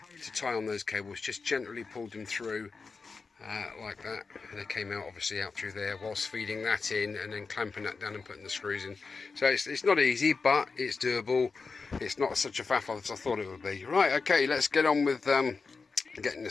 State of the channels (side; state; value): right; quieter; 4.6 dB